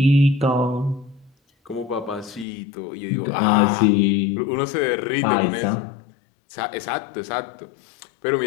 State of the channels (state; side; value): drops out; right; at 2.5 s